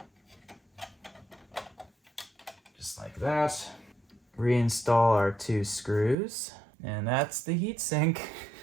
Just like that. Reinstall our 2 screws. And that's the heatsink.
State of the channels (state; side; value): drops out; left; at 6.2 s